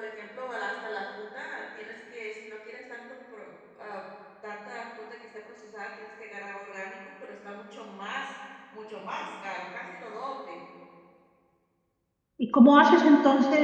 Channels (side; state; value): both; identical; correlation 1.00